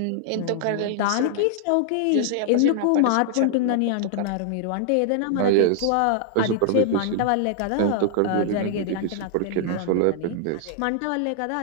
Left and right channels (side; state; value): both; different; correlation -0.01